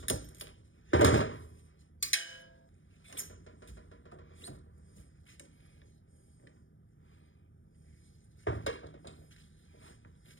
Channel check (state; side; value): late; right; 0.57 ms